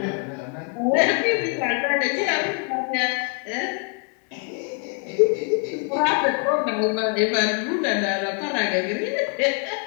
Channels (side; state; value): right; quieter; 38.1 dB